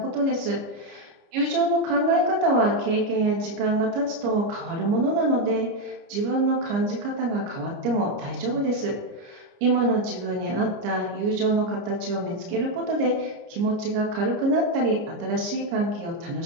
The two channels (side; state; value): left; late; 30 ms